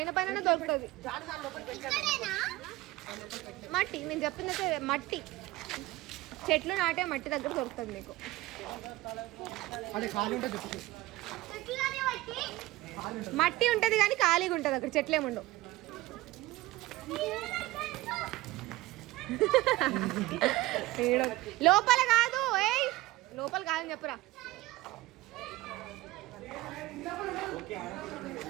దొరుకుతుంది మట్టి. నేను చెప్పిందైతే మట్టి. చెట్లు నాటే మట్టి దగ్గర దొరుకుతుంది మీకు. మట్టి ఉంటది కానీ ఖాళీగా ఉంటది అక్కడ. చెట్లేముండవు. లోపల కాదు. లోపల కాదని చెప్పురా.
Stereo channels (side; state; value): left; quieter; 18.3 dB